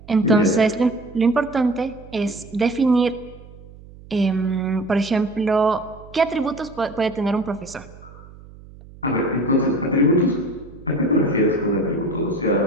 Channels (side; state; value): right; noise; hum, 20 dB below the sound